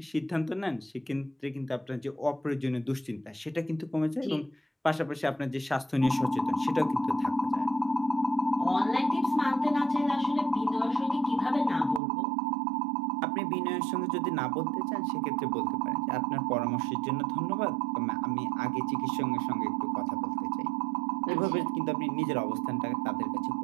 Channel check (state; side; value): drops out; left; at 12.0 s